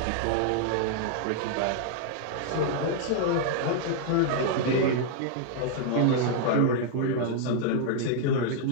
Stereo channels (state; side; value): different; both; correlation 0.00